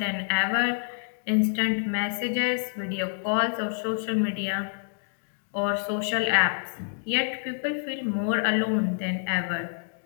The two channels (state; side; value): silent; right; digital silence